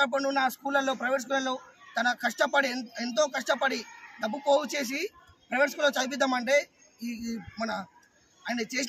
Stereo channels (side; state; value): both; identical; correlation 1.00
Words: పండు ఉన్న స్కూళ్ళల్లో, ప్రైవేట్ స్కూళ్ళల్లో తన కష్టపడి ఎంతో కష్టపడి డబ్బు పోగు చేసి ప్రైవేట్ స్కూల్లో చదివిద్దామంటే ఈ మన ఆయన